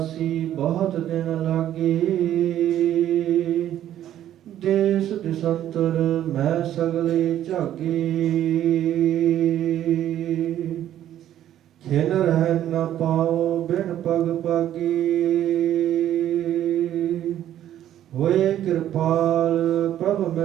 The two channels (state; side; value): quieter; left; 11.7 dB